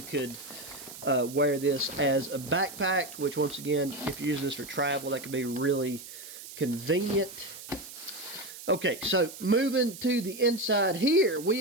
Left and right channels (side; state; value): right; noise; hiss, 14 dB below the sound